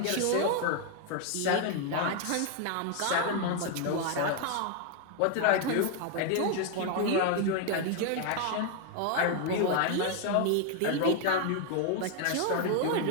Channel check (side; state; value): both; different; correlation 0.00